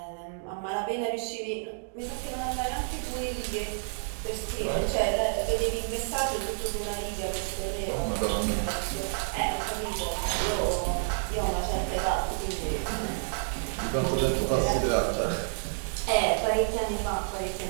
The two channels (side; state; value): left; silent; digital silence